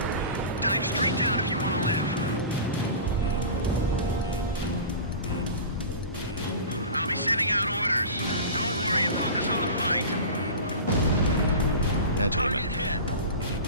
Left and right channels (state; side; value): inverted; both; correlation -0.33